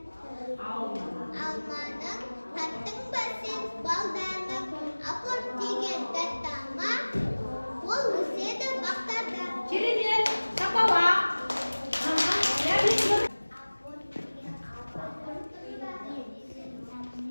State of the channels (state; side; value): inverted; both; correlation -1.00